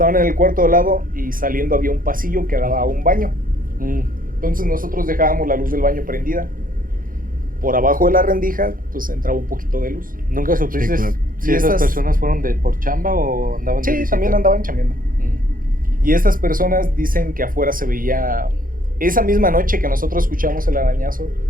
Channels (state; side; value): late; left; 0.41 ms